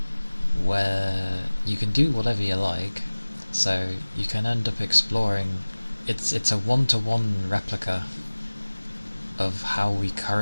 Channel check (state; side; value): inverted; both; correlation -1.00